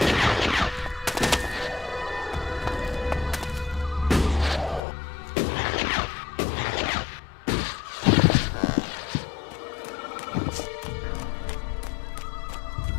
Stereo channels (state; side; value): drops out; right; at 4.8 s